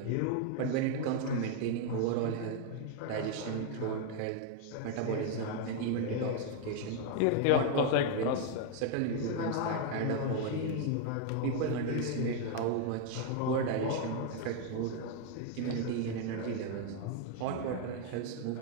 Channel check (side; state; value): both; different; correlation 0.00